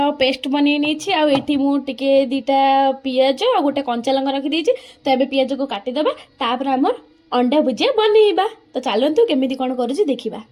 पेस्ट बनै नहीं आ एठी मु टिके दीटा पियाज और गोटे कंचा लंका रखी देछि। तो एबे पियाज को काटिदेबा तापर हमर अंडा भुजिया बनैबा। तो चलतु केमिति कोन करूछि देखिबा।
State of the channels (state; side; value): identical; both; correlation 1.00